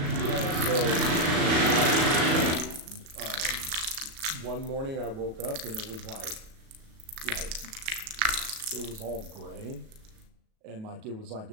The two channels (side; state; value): left; late; 37 ms